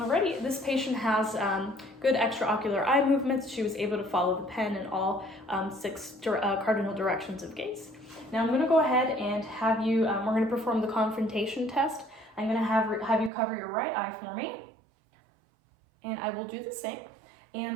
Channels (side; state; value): left; drops out; at 13.3 s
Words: this patient has good extraocular eye movements. She was able to follow the pen in all 6 cardinal directions of gaze. Now I'm going to go ahead and have you, we're going to perform the confrontation test. I'm going to have you cover your right eye for me, and I will do the same.